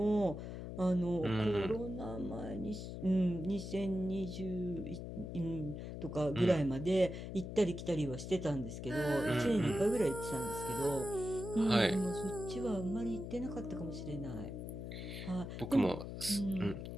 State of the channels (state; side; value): noise; left; hum, 7 dB below the sound